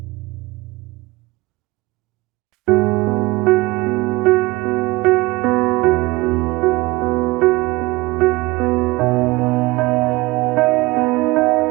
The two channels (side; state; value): left; quieter; 21.6 dB